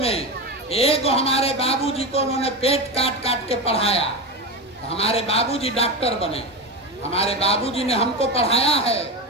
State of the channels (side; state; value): both; normal; correlation 0.19